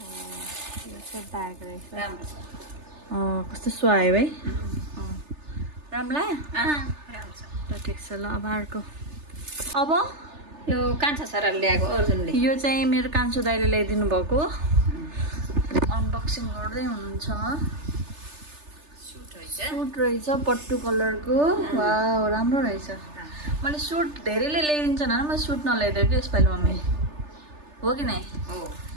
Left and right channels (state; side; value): late; left; 3.3 ms